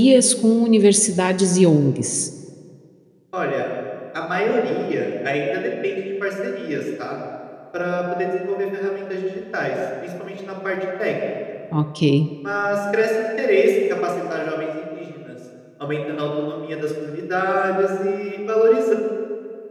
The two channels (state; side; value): identical; both; correlation 1.00